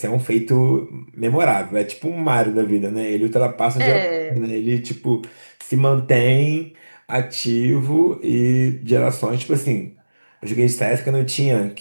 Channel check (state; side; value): inverted; both; correlation -1.00